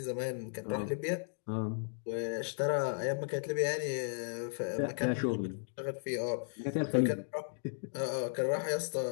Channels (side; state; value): right; silent; digital silence